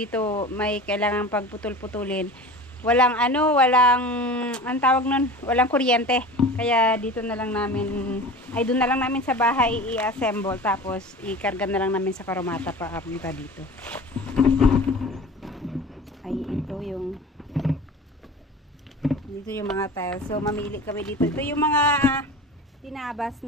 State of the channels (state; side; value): normal; both; correlation 0.36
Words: may kailangan pagputol-putulin. Walang ang tawag nun, walang kuryente. Kaya dito na lang namin, doon na lang namin sa bahay i-assemble tapos ikarga na lang namin sa karomata pa apunta dito. Ay, dito yung mga tiles. So mamili kami dito. Ito yung mga tinabas